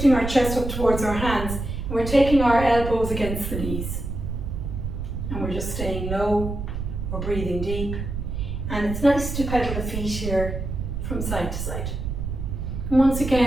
our chest up towards our hands, and we're taking our elbows against the knees. And we're just staying low, we're breathing deep. And it's nice to pedal the feet here from side to side. And once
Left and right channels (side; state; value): right; noise; rumble, 5 dB below the sound